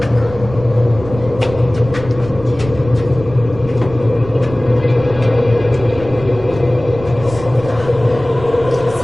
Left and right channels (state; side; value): noise; right; rumble, 14 dB below the sound